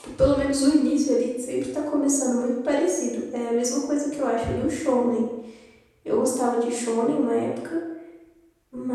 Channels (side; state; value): both; identical; correlation 1.00